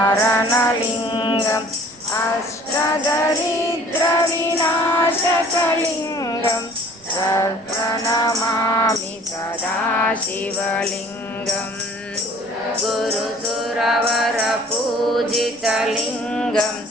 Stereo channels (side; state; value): right; noise; rumble, 29 dB below the sound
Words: अष्टदरिद्रविनाशकलिङ्गं प्रणमामि सदा शिवलिङ्गं गुरुसुरवरपूजितलिङ्गं